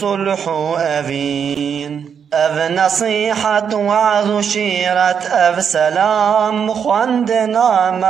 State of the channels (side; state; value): left; quieter; 7.3 dB